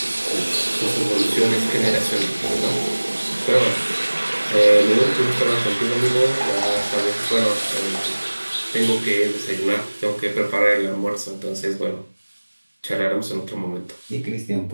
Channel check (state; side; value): inverted; both; correlation -1.00